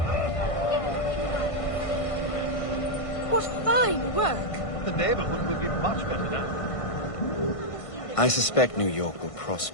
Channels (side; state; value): right; late; 1.5 ms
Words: What fine work! The neighborhood will be much better now. I suspect New York will